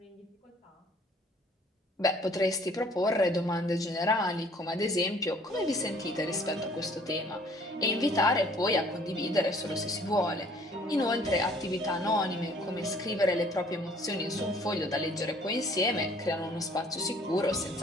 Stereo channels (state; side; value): normal; both; correlation 0.56